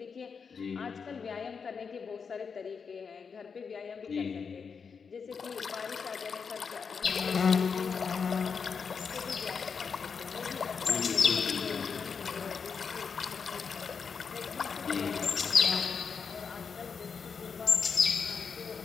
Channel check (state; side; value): quieter; right; 5.9 dB